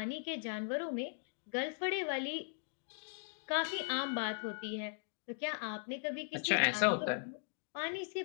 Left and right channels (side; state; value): right; silent; digital silence